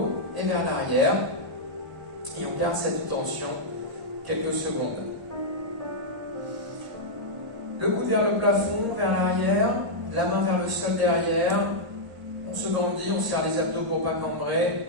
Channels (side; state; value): left; late; 1.0 ms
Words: et vers l'arrière. Et on garde cette tension quelques secondes. Le coude vers le plafond, vers l'arrière, la main vers le sol derrière. On se grandit, on serre les abdos pour ne pas